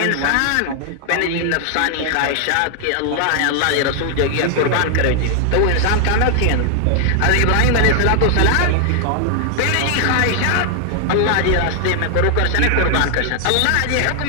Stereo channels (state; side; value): different; both; correlation 0.00